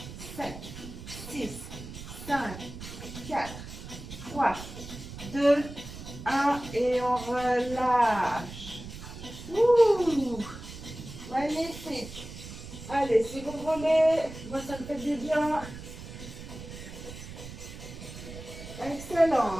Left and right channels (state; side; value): noise; right; rumble, 12 dB below the sound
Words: 7, 6, 5, 4, 3, 2, 1 et on relâche. Ouh, magnifique. Allez, si vous voulez, moi ça me fait du bien.